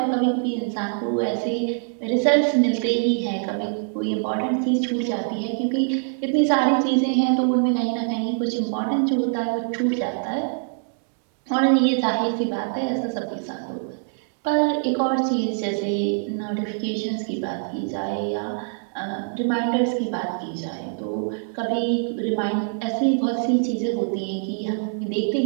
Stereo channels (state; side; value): silent; left; digital silence